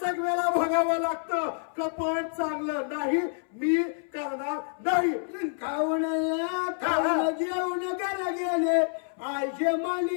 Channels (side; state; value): right; silent; 59 dB below the other